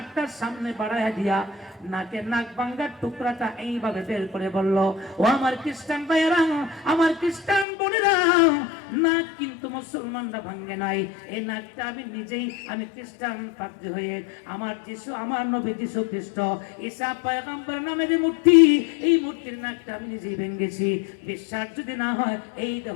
সামনে বাড়াইয়া দিয়া নাকের নাক ভাঙার টুকরাটা এইভাবে বের করে বলল, ও আমার খ্রিস্টান ভাইয়েরা, আমার খ্রিস্টান বোনেরা, নাক কিন্তু মুসলমানরা ভাঙে নাই। এই নাকটা আমি নিজেই, আমি খ্রিস্টান পাদ্রী হয়ে আমার যিশু, আমার নবী যিশু খ্রিস্ট ঈসা পয়গম্বর নামে যে মূর্তি, এই মূর্তির নাকটা আমি নিজেই ভেঙেছি। বিশ্বাস যদি না হয়, এই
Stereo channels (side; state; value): right; drops out; at 7.7 s